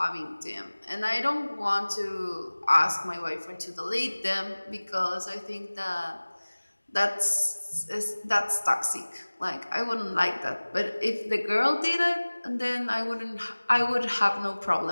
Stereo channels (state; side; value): inverted; both; correlation -1.00